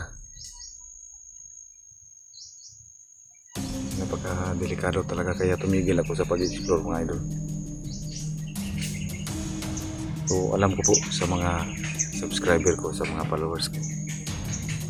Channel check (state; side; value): identical; both; correlation 1.00